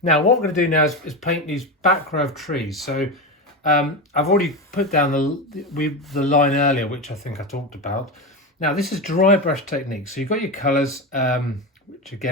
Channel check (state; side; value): normal; both; correlation 0.18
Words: Now, what we're going to do now is paint these back row of trees. So I've already put down the line earlier, which I think I talked about. Now, this is dry brush technique. So you've got your colours, which